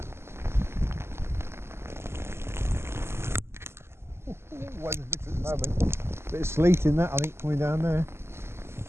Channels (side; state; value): left; late; 0.12 ms